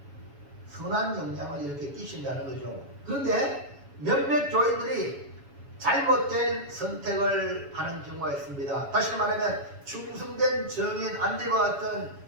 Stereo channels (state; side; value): late; left; 7.1 ms